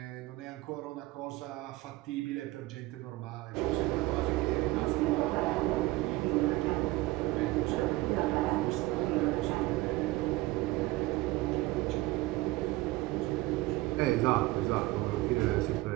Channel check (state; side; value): quieter; left; 19.5 dB